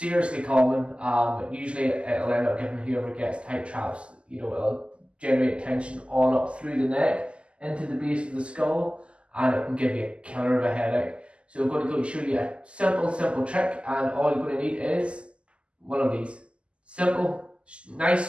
common. Usually it'll end up giving whoever gets tight traps, it'll generate tension all up through the neck into the base of the skull, and it can give you a killer of a headache. So we're going to go show you a simple trick, and all you're going to need is one of these. Simple,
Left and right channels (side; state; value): left; late; 0.054 ms